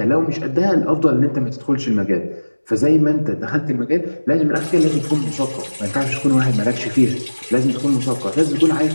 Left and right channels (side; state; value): both; inverted; correlation -1.00